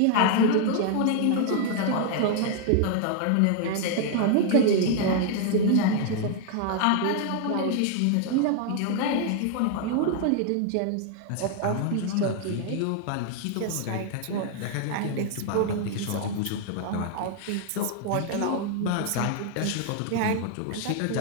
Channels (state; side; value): different; both; correlation 0.00